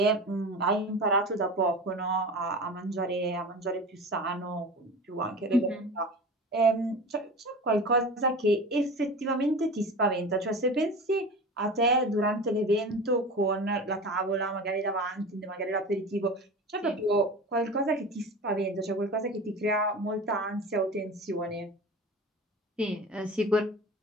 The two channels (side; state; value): both; normal; correlation 0.33